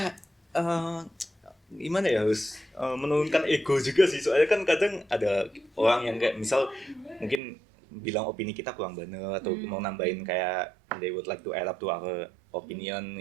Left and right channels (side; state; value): left; drops out; at 7.4 s